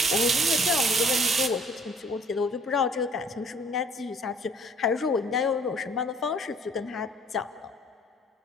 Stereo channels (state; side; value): normal; both; correlation 0.56